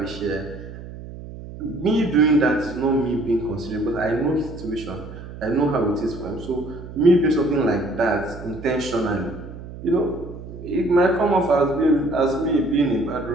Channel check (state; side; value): noise; right; hum, 13 dB below the sound